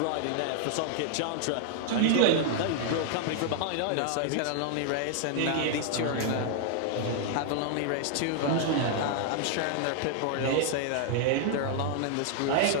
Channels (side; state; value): both; different; correlation 0.00